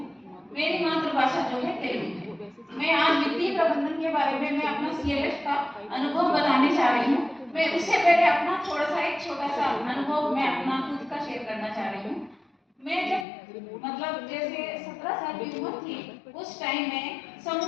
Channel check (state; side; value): drops out; right; at 13.2 s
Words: मेरी मातृभाषा जो है तेलुगु है। मैं आज वित्तीय प्रबंधन के बारे में मैं अपना सीएलएफ का अनुभव बताने जा रही हूँ। मैं उससे पहले अपना थोड़ा सा एक छोटा सा अनुभव मैं अपना खुद का शेयर करना चाह रही हूँ। मैं जब मतलब जैसे 17 साल की उम्र थी, उस टाइम में समूह